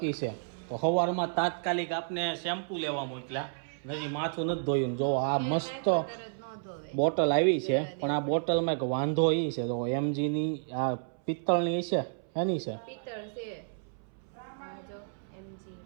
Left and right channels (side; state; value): left; silent; 57 dB below the other